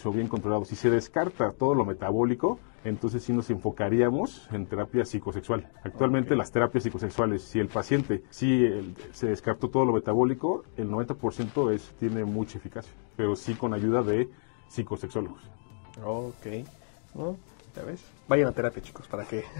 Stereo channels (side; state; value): right; silent; digital silence